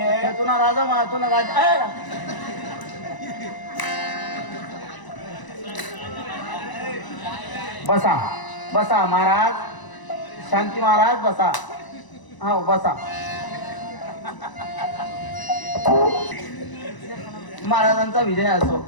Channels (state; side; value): late; right; 1.0 ms